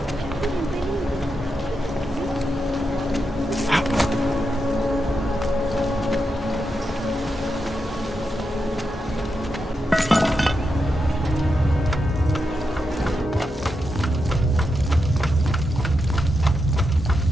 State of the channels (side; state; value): both; normal; correlation 0.86